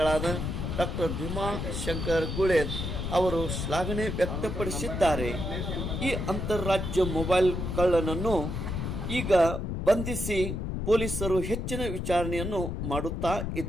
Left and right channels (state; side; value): noise; left; rumble, 3 dB below the sound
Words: ಡಾಕ್ಟರ್ ಭೀಮಾ ಶಂಕರ್ ಗುಳೇದ್ ಅವರು ಶ್ಲಾಘನೆ ವ್ಯಕ್ತಪಡಿಸಿದ್ದಾರೆ. ಈ ಅಂತರರಾಜ್ಯ ಮೊಬೈಲ್ ಕಳ್ಳನನ್ನು ಈಗ ಬಂಧಿಸಿ ಪೊಲೀಸರು ಹೆಚ್ಚಿನ ವಿಚಾರಣೆಯನ್ನು ಮಾಡುತ್ತಾ